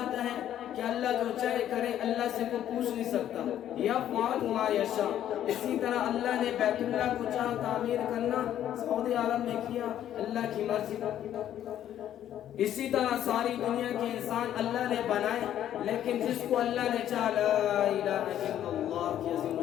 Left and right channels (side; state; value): right; quieter; 11.1 dB